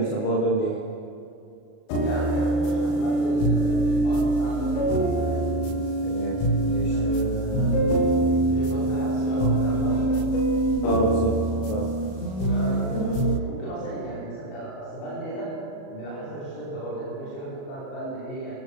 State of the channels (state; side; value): late; right; 37 ms